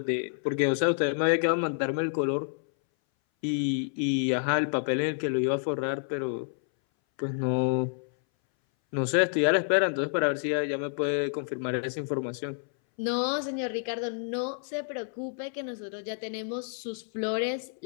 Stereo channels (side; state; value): right; silent; 59 dB below the other